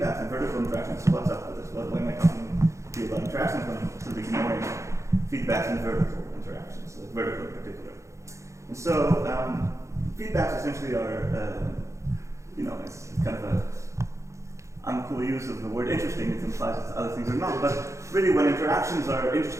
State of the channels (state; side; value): late; left; 0.14 ms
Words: and vertical interactions. So what's up with this? Why am I talking to you about interactions when I'm sort of ignoring feedbacks and vertical interactions, vertical in particular? And so feedbacks essentially are, it's kind of an uncool use of the word interesting. It implies that other things are not. But really, when interactions are